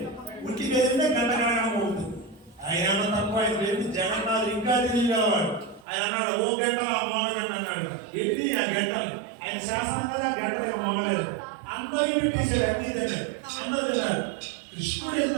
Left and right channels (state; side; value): drops out; left; at 5.9 s